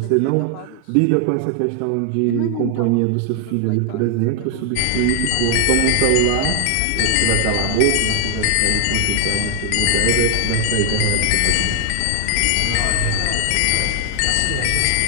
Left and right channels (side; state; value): both; different; correlation 0.00